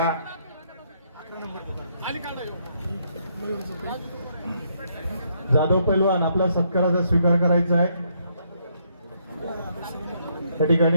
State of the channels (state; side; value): inverted; both; correlation -0.73